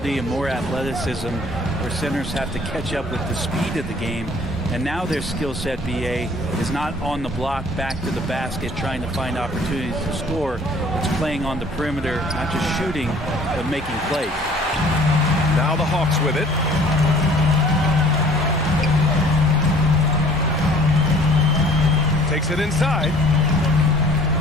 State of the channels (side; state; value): both; normal; correlation 0.53